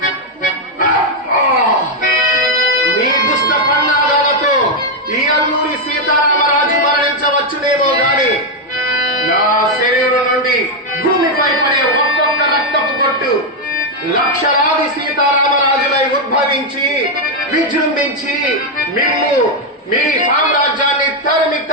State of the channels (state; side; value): normal; both; correlation 0.02